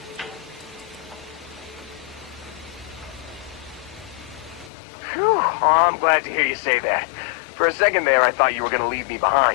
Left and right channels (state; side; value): drops out; right; at 4.7 s